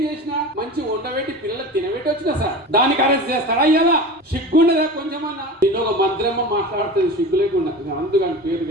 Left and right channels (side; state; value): both; normal; correlation 0.32